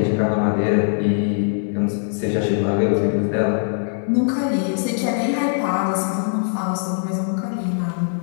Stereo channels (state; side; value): silent; right; digital silence